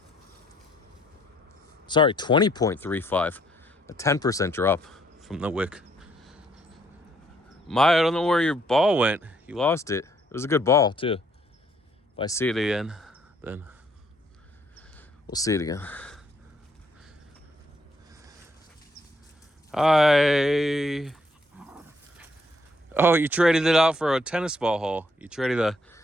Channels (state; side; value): normal; both; correlation 0.69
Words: Sorry, 20.35, a 10% drop from the wick. I don't know where your ball went. You lost it. It was a good ball too. If I see it again, then we'll see it again. Hi. Oh, you traded it out for a tennis ball hole. You traded